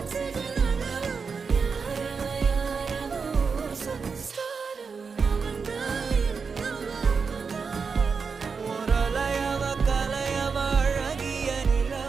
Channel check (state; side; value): quieter; left; 5.3 dB